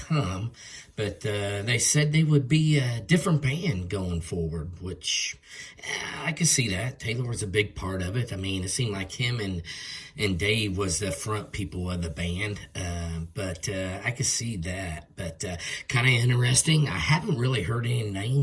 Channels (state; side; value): identical; both; correlation 1.00